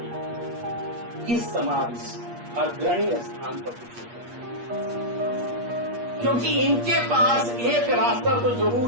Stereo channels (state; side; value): late; left; 8.4 ms